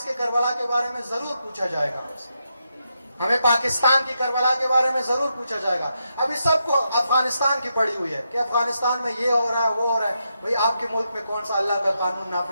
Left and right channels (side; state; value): both; inverted; correlation -0.83